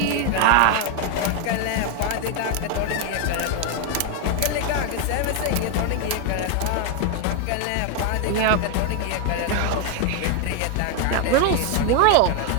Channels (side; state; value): both; different; correlation 0.01